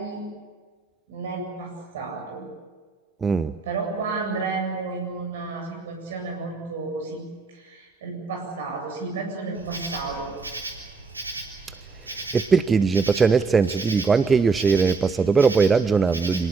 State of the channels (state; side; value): quieter; left; 4.7 dB